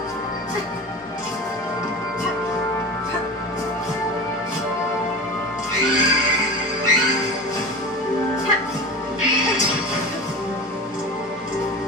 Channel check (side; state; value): both; normal; correlation 0.32